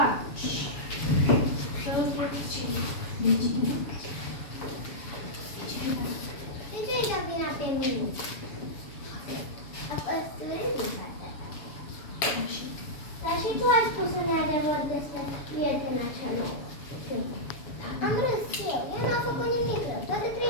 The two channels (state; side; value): late; right; 7.1 ms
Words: De ce îi dau vina pe mine? A păsturit Dar și tu ai spus un adevăr despre prietena cea nouă. Am râs eu. Ea n-a făcut nimic rău. Toate